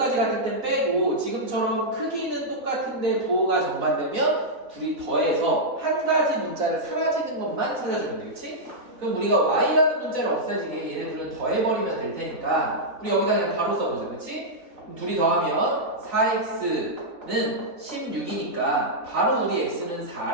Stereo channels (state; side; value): late; left; 3.9 ms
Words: 같은 데는 빼고 지금처럼 크기는 똑같은데 부호가 정반되면 둘이 더해서 한 가지 문자를 사라지는 것만 찾아주면 되겠지? 그럼 우리가 y라는 문자를 없애지게 얘네들은 더해버리면 될 테니까 우리 여기다 그냥 바로 써보자, 그렇지? 둘이 더하면 4x는 16이니까 바로 우리 x는